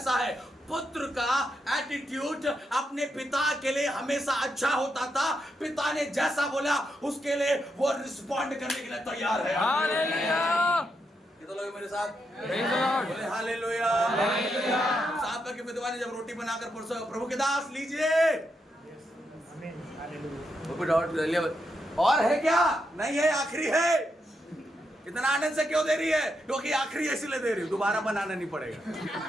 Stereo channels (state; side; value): normal; both; correlation 0.82